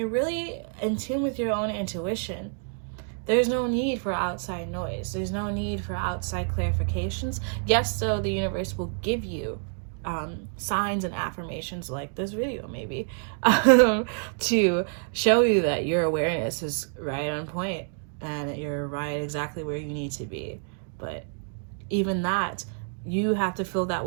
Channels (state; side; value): silent; left; 60 dB below the other